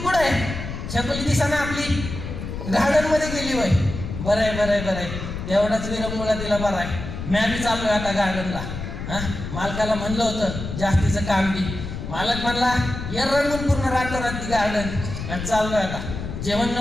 आहे? छकुली दिसा ना आपली गार्डन मध्ये गेली वय. बरं आहे, तेवढाच विरंगुळा तिला बरं आहे. मी बी चाललोय आता गार्डनला. मालकाला म्हणलं होतं जास्तीचं काम बी, मालक म्हणला या रंगून पूर्ण रातोरात ती गार्डन. चाललोय आता, जेवण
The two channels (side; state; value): left; noise; rumble, 7 dB below the sound